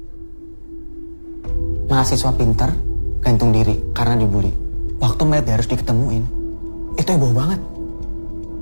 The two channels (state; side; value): inverted; both; correlation -1.00